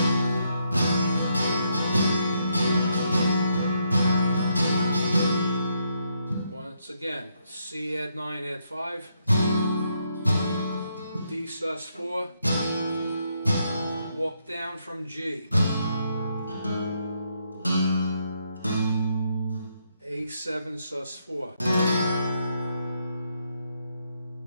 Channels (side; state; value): both; inverted; correlation -0.77